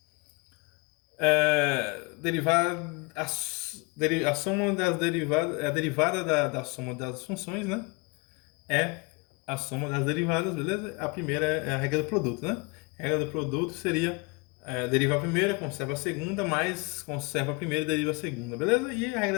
A soma das derivadas, a derivada da soma das funções, né? É a soma das derivadas, beleza? A primeira é a regra do produto, né? A regra do produto seria deriva a primeira, conserva a segunda, mais conserva a primeira e deriva a segunda, beleza? E a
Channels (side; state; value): right; quieter; 28.4 dB